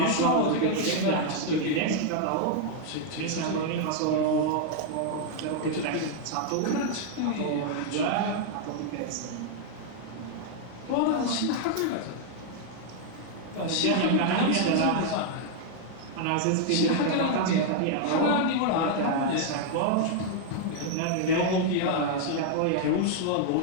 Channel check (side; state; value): both; different; correlation 0.00